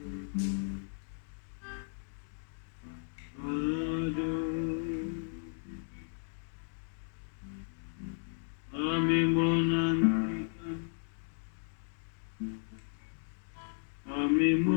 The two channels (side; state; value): right; silent; digital silence